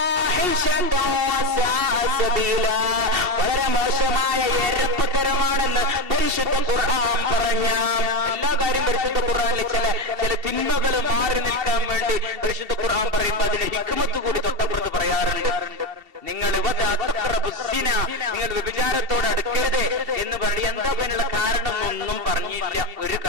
വസാഅ സബീലാ. വളരെ മോശമായ എരപ്പത്തരമാണെന്ന് പരിശുദ്ധ ഖുർആൻ പറഞ്ഞ എല്ലാ കാര്യം പരിശുദ്ധ ഖുർആനിൽ ചില തിന്മകൾ മാറി നിൽക്കാൻ വേണ്ടി പരിശുദ്ധ ഖുർആൻ പറയുമ്പോൾ അതിന് ഹിക്മത്ത് കൂടി തൊട്ടപ്പുറത്ത് പറയാറുണ്ട്. നിങ്ങൾ വ്യഭിചാരത്തോട് അടുക്കരുത് എന്ന് പറയും. എന്താ അതിനുള്ള കാരണം ഒന്നും പറഞ്ഞില്ല, ഒരു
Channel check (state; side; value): late; left; 2.7 ms